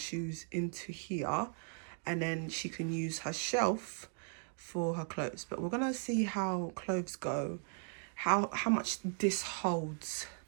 into here, and then she can use her shelf for her clothes. But we're gonna see how clothes go, how much this holds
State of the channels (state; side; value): silent; left; 53 dB below the other